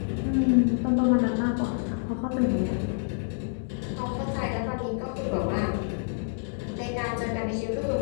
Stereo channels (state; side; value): silent; right; 60 dB below the other